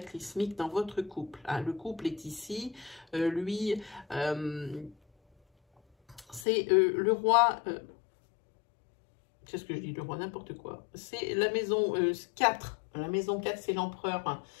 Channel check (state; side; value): drops out; right; at 6.5 s